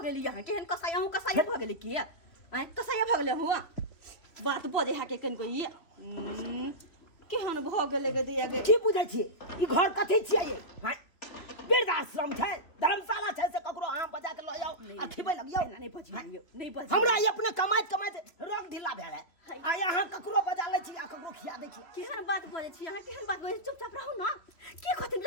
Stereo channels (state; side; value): late; right; 3.0 ms